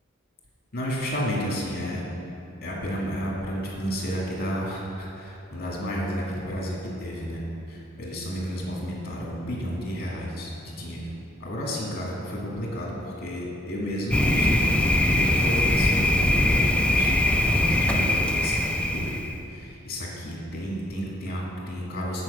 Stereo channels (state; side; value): normal; both; correlation 0.66